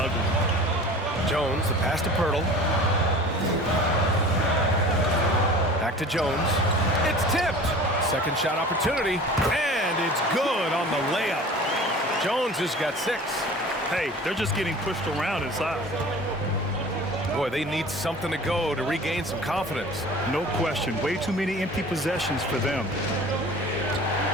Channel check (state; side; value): normal; both; correlation 0.41